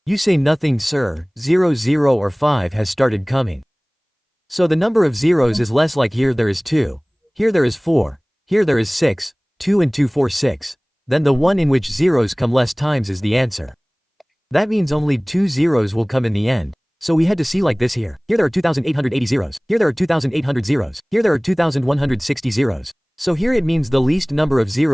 You say nothing sir, 0 0 or 5 has started coming. So the number of zeros is less like here there is 2, here there is 4, here there is 6, 2 and 2 4 6. Then the one in which zeros come less times is the answer. That means only 2 zeros will come in the end. So we had to see like this here. Here there are 2,880 zeros. Here there are 2,800 zeros. Here there are 2,160 zeros. So here it means the least number of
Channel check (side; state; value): both; identical; correlation 1.00